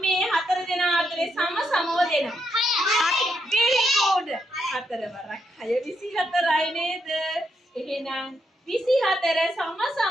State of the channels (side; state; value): both; normal; correlation 0.80